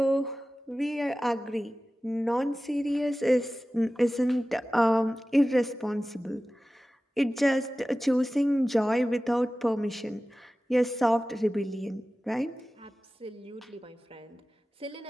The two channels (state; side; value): normal; both; correlation 0.96